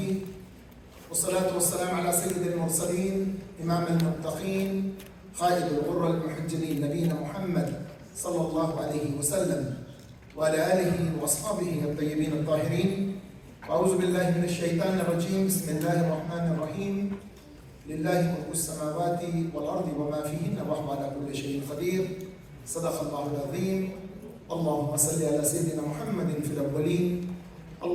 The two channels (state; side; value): identical; both; correlation 1.00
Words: والصلاة والسلام على سيد المرسلين إمام المتقين قائد الغر المحجلين نبينا محمد صلى الله عليه وسلم وعلى آله وأصحابه الطيبين الطاهرين. أعوذ بالله من الشيطان الرجيم. بسم الله الرحمن الرحيم. لله ملك السماوات والأرض وما فيهن وهو على كل شيء قدير. صدق الله العظيم. اللهم صل على سيدنا محمد في الأولين،